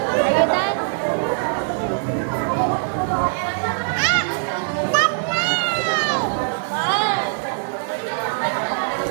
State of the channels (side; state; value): left; silent; digital silence